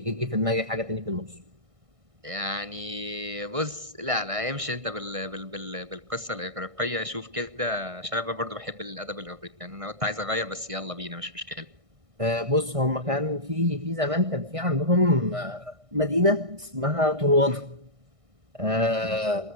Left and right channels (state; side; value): late; left; 1.6 ms